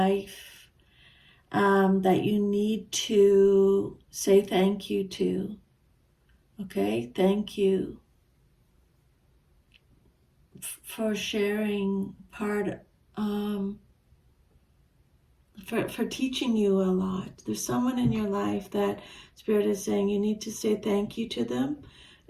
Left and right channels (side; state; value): both; identical; correlation 1.00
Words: that you need to say thank you to. Okay, thank you for sharing part, for teaching you a lot. There's someone in your life that Spirit is saying you need to say thank you to them,